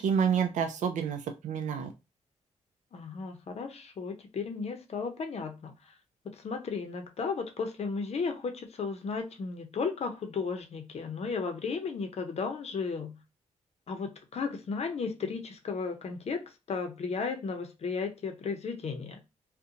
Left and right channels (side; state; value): both; normal; correlation 0.48